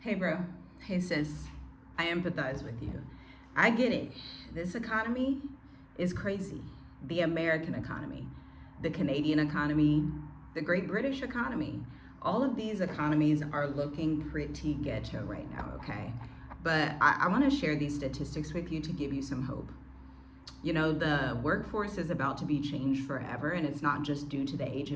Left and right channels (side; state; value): both; identical; correlation 1.00